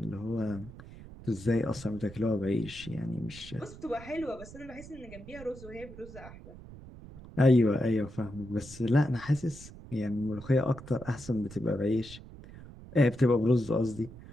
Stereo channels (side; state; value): right; noise; rumble, 16 dB below the sound